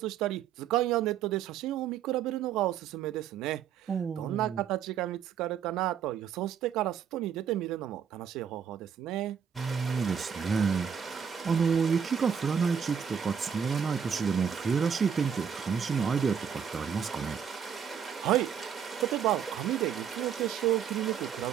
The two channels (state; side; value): quieter; left; 7.7 dB